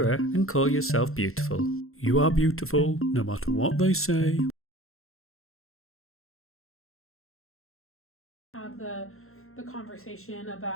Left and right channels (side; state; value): right; late; 0.62 ms